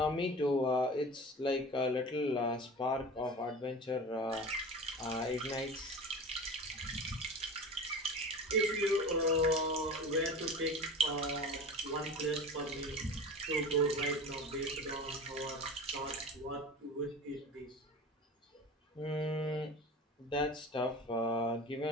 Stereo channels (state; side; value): normal; both; correlation 0.34